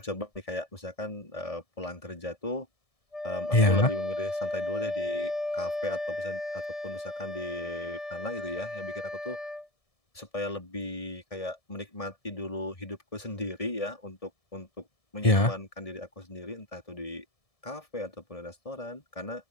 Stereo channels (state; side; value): late; right; 1.7 ms